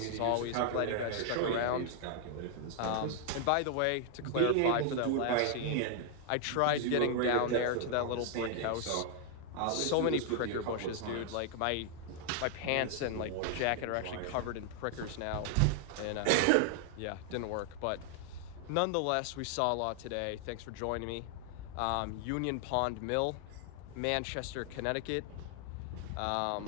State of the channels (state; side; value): different; both; correlation 0.00